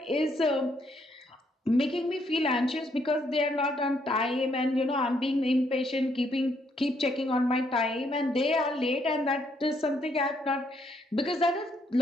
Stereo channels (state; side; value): normal; both; correlation 0.72